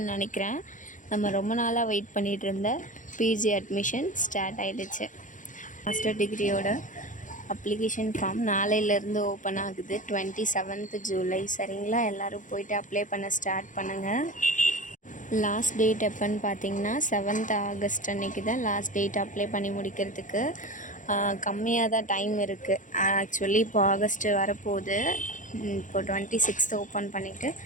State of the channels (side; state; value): right; late; 0.37 ms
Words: நினைக்கிறேன். நம்ம ரொம்ப நாளாக வெயிட் பண்ணிகிட்டு இருந்த பிஜி அட்மிஷன் ஸ்டார்ட் ஆகிடுச்சு. மாஸ்டர் டிகிரியோட அப்ளிகேஷன் ஃபார்ம் நாளையிலேருந்து ஓப்பன் ஆகுது. 27th ஜூலை. சரிங்களா? எல்லோரும் போய்ட்டு அப்ளை பண்ண ஸ்டார்ட் பண்ணுங்கள். லாஸ்ட் டேட் எப்போன்னு பார்த்தீங்கன்னா 7th ஆகஸ்ட் அன்றைக்கி தான் லாஸ்ட் டேட் அப்ளை பண்ணி முடிக்கிறதுக்கு. கம்மியாக தான் டைம் இருக்குது. ஆக்சுவலி இப்போ ஆகஸ்ட்டு வரப்போகுது. இப்போ 26th ஓப்பன் பண்ணிவிட்டு